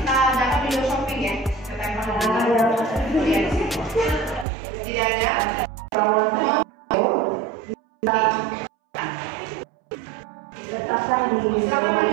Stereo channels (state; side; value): drops out; left; at 4.5 s